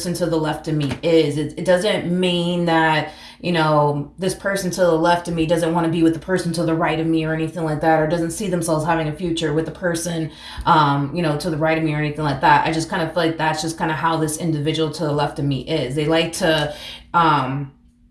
to the left of me is. It doesn't mean that, you know, this person to the left of me doesn't want to be with the person to the right of me or anything like that, or doesn't see themselves having a future with the person, you know, to the right of me or anything like that. I just kind of feel like that's just kind of how this individual to the left of me is. They like to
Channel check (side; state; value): both; identical; correlation 1.00